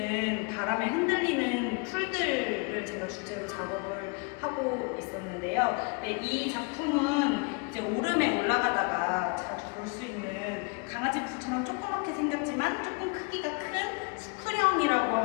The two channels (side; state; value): right; quieter; 32.7 dB